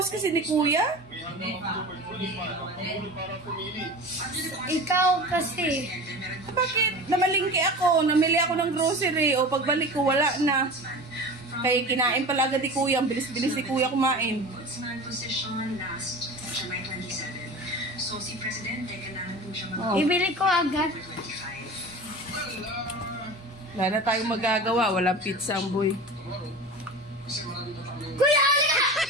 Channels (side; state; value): both; normal; correlation 0.33